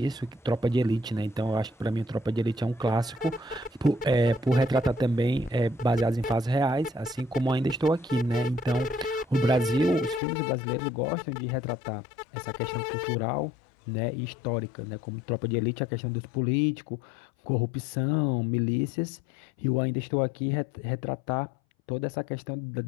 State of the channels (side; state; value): right; drops out; at 10.2 s